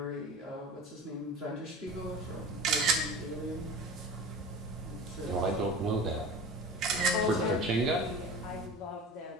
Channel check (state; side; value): normal; both; correlation 0.35